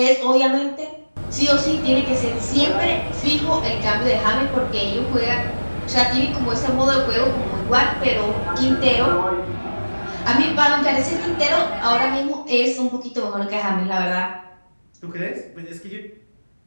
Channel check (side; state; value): both; inverted; correlation -1.00